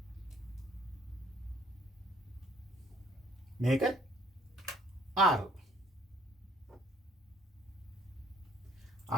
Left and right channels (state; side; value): normal; both; correlation 0.62